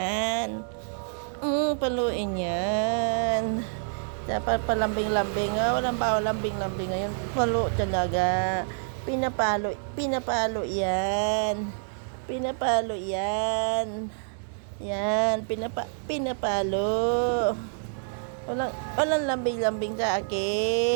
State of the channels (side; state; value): left; silent; digital silence